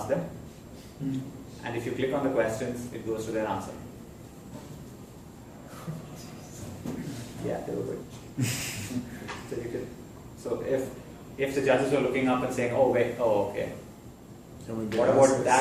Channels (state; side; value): identical; both; correlation 1.00